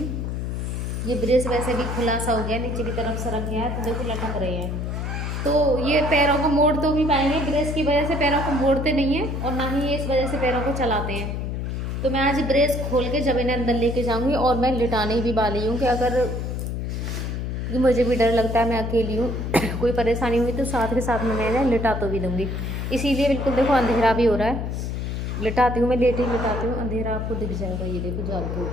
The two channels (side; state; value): left; noise; hum, 3 dB below the sound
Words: ये ब्रेस वैसे भी खुला सा हो गया, नीचे की तरफ सरक गया है तो देखो लटक रहे हैं। तो ये पैरों को मोड़ तो भी पाएंगे, ब्रेस की वजह से पैरों को मोड़ते नहीं हैं और ना ही ये इस वजह से पैरों को चलाते हैं। तो मैं आज ब्रेस खोल के जब इन्हें अंदर लेके जाऊंगी, और मैं लिटाने भी वाली हूँ कि अगर मुझे भी डर लगता है, मैं अकेली हूँ कोई परेशानी हुई तो साथ के साथ में मैं इन्हें लिटा तो भी दूँगी। इसीलिए बिल्कुल देखो अंधेरा भी हो रहा है, लिटाती हूँ मैं, लेट ही लिटाती हूँ, अंधेरा आपको दिख जाएगा। ये देखो जाल के